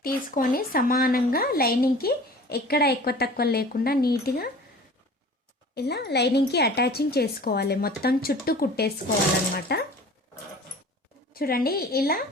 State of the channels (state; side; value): normal; both; correlation 0.43